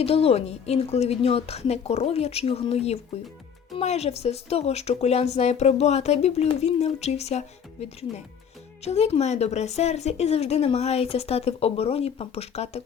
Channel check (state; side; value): quieter; right; 7.4 dB